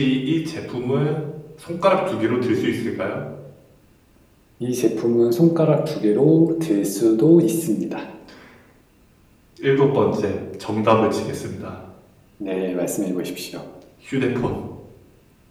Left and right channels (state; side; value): identical; both; correlation 1.00